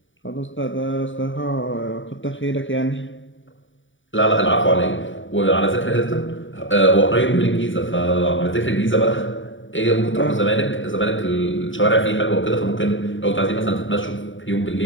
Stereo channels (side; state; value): right; late; 0.56 ms